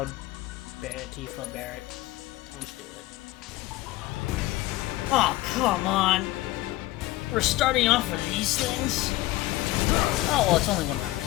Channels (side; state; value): right; quieter; 17.8 dB